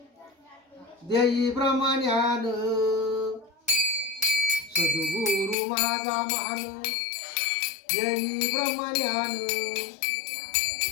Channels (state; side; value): drops out; right; at 5.6 s